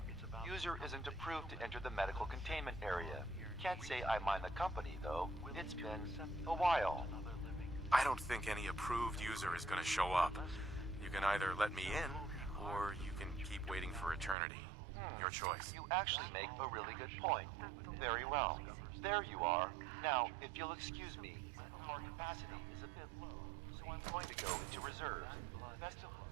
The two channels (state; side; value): drops out; left; at 14.4 s